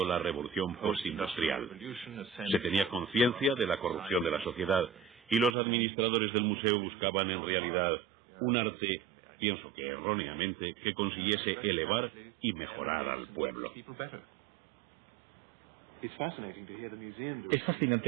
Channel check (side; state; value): left; drops out; at 5.6 s